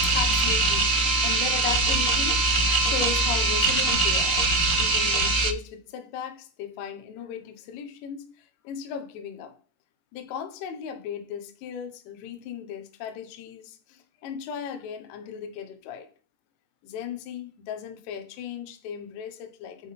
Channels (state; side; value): late; right; 17 ms